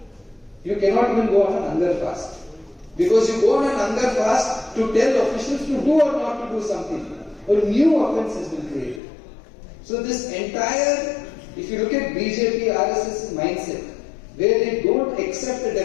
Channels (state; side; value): drops out; right; at 9.0 s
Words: You cannot even go on an hunger fast. Because you go on an hunger fast to tell officials to do or not to do something. A new offence has been created. So this entire, if you look at BJP, RSS mindset, where they don't accept a